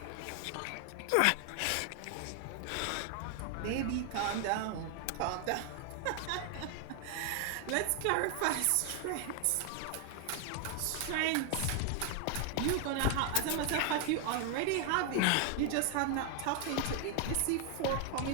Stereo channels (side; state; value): both; different; correlation 0.00